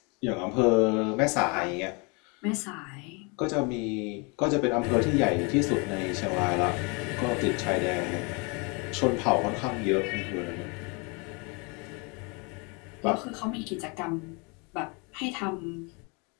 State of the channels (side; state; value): right; quieter; 31.3 dB